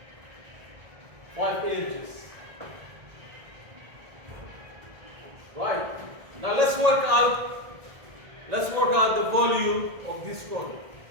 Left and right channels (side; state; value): left; late; 1.8 ms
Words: 5 inches. Right. Now let's work out the volume of this cone.